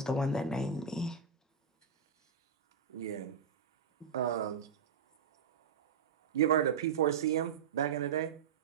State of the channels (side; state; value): left; quieter; 6.4 dB